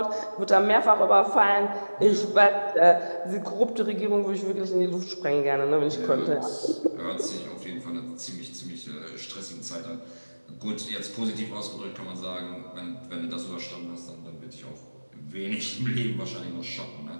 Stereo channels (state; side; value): inverted; both; correlation -1.00